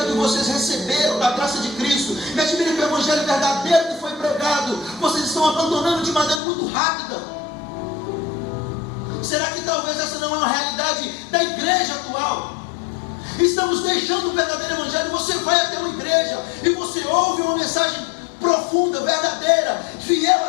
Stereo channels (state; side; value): drops out; right; at 6.4 s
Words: que vocês receberam da graça de Cristo, me admira que o evangelho verdadeiro que foi pregado, vocês estão abandonando de maneira muito rápida. Será que talvez essa não é uma realidade da igreja atual? Estamos deixando o verdadeiro evangelho. Você vai até uma igreja e você ouve uma mensagem profunda, verdadeira, fiel